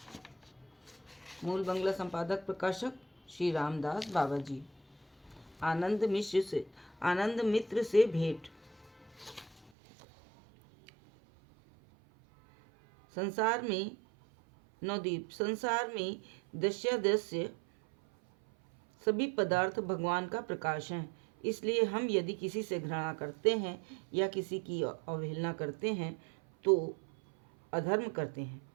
मूल बंगला संपादक प्रकाशक श्री रामदास बाबा जी। आनंद मित्र से भेंट। संसार में दृश्य सभी पदार्थ भगवान का प्रकाश हैं। इसलिए हम यदि किसी से घृणा करते हैं या किसी की अवहेलना करते हैं तो अधर्म करते हैं।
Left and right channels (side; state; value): left; drops out; at 9.7 s